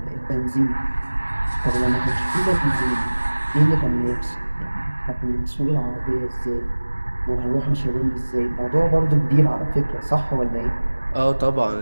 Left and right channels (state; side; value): inverted; both; correlation -1.00